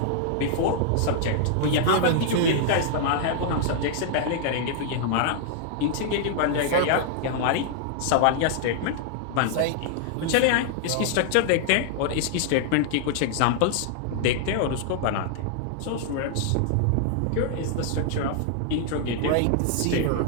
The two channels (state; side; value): different; both; correlation -0.01